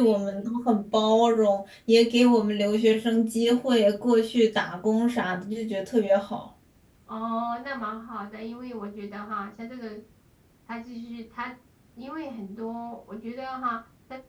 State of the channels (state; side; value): identical; both; correlation 1.00